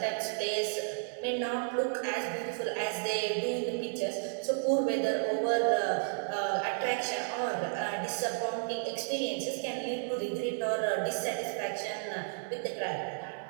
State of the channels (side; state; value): left; silent; digital silence